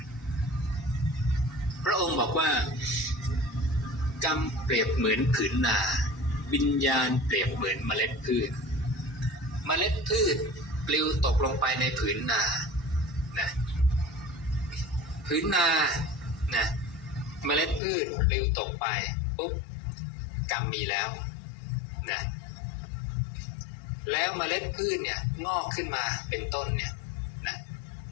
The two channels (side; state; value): right; drops out; at 17.8 s